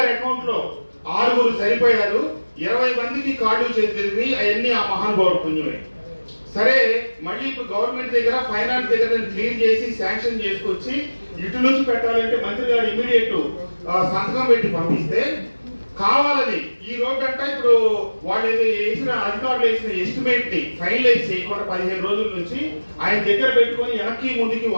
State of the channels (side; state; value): both; inverted; correlation -1.00